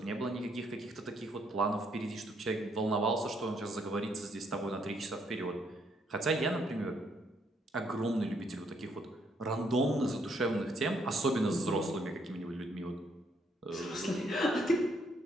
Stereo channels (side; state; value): both; normal; correlation 0.71